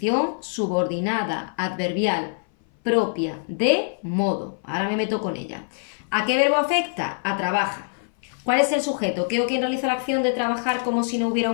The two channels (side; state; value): right; silent; 58 dB below the other